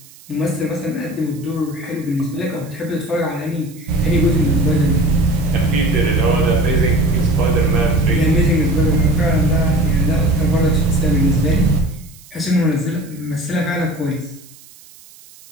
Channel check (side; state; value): right; noise; hiss, 23 dB below the sound